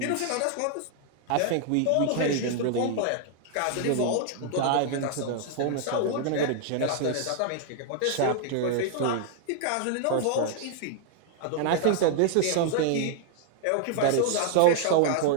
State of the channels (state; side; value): different; both; correlation 0.00